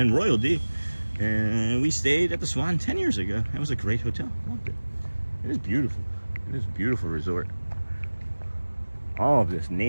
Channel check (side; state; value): both; inverted; correlation -1.00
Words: Royal D. And we stayed at the Swan 10 years ago. That was a great hotel. Loved it. It is beautiful. It is a beautiful resort. All of this